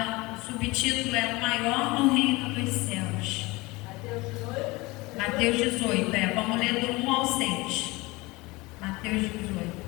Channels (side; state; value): right; quieter; 22.9 dB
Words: o subtítulo é o maior no reino dos céus. Mateus 18, vamos ler do 1 ao 6. Mateus 18.